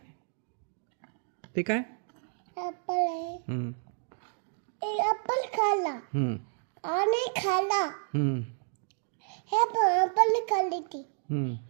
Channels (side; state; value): left; silent; digital silence